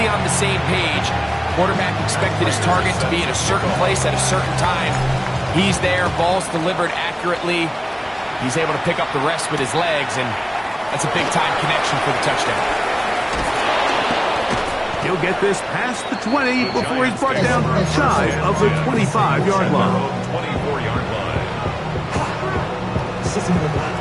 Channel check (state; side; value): identical; both; correlation 1.00